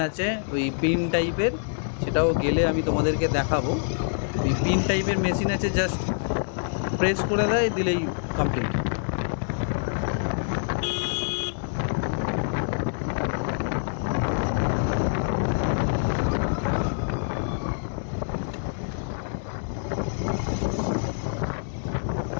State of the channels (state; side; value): silent; right; digital silence